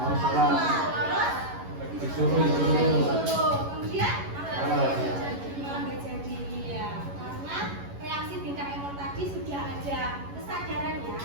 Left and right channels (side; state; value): left; late; 11 ms